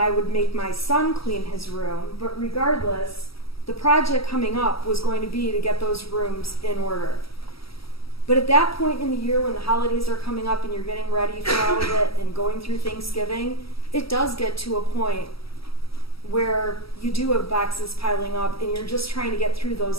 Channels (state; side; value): late; right; 0.76 ms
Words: would make my son clean his room, but regardless, the project coming up was going to be to get those rooms in order. But at that point in the year when the holidays are coming up and you're getting ready for all of it and going through Thanksgiving, it does get to a point where you do have boxes piling up and you're just trying to get through